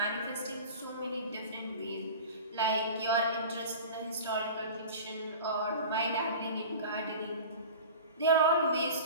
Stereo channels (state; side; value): inverted; both; correlation -0.36